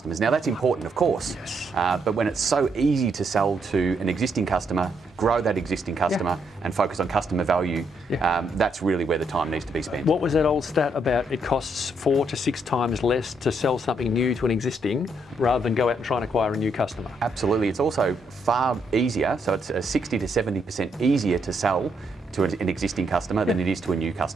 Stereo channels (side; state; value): both; normal; correlation 0.75